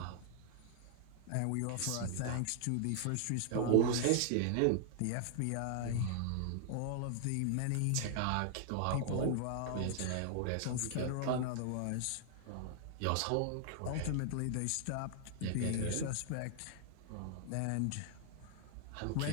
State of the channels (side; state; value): both; different; correlation 0.00